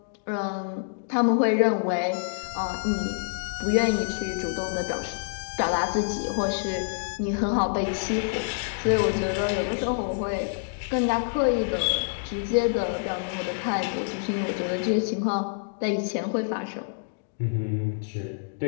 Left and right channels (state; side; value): silent; right; digital silence